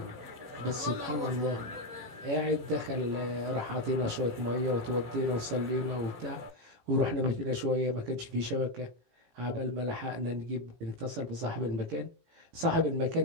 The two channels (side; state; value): left; late; 18 ms